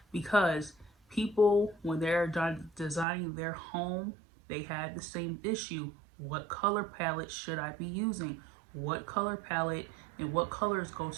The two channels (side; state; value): left; drops out; at 3.1 s